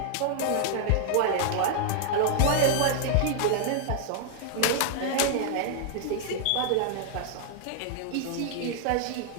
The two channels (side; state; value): both; different; correlation 0.00